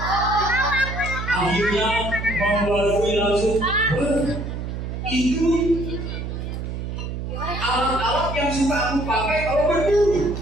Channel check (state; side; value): noise; right; hum, 5 dB below the sound